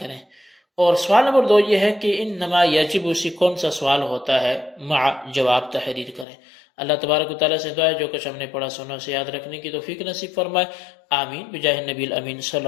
اور سوال نمبر 2 یہ ہے کہ انما یجب سے کون سا سوال ہوتا ہے، مع جواب تحریر کریں۔ اللہ تبارک و تعالیٰ سے دعا ہے جو کچھ ہم نے پڑھا سنا اسے یاد رکھنے کی توفیق نصیب فرمائے، آمین بجاہ النبی الامین صلی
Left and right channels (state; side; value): drops out; right; at 6.2 s